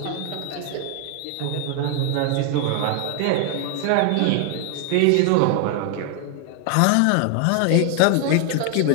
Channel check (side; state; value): both; different; correlation 0.00